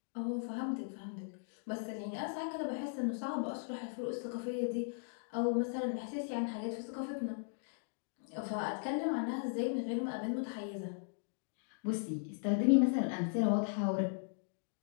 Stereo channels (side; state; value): right; silent; digital silence